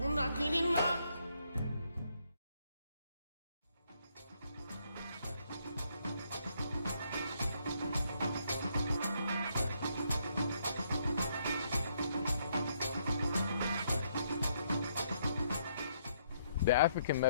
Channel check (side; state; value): both; inverted; correlation -0.72